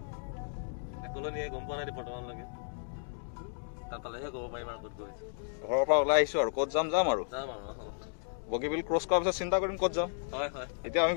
একলনিয়ে গম পোৱা নাই বৰ্তমানলৈকে তাত পালেহে ক'ব পাৰিম আৰু ক'ত গৈছো ঘৰৰ পৰা ওলাই আহিছো আৰু ক'ত যাম আৰু বগীবিল ক্ৰছ কৰাৰ পিছত চিন্তা কৰিম ক'ত যাম হয় হয় এতিয়া আমি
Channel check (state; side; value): silent; right; digital silence